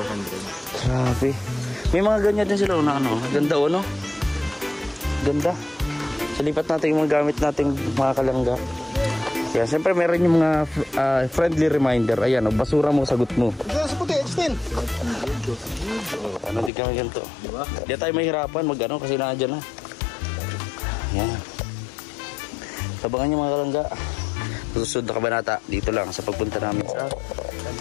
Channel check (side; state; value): right; drops out; at 16.7 s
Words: Grabe. May mga ganyan din sila na ano. Ganda o, no? Ganda. So, lipat natin yung mga gamit nating mga kalangga. Kaya siyempre meron yung mga friendly reminder. Ayan, o, basura mo, sagot mo. Diyan sa puti, extend. Ano, di kami ganito. Di tayo mahirapan mag-ano kasi nandiyan na. Ayan. Tabangan yung mga kalangga. Susunod na kabanata dito lang sa pagpunta namin sa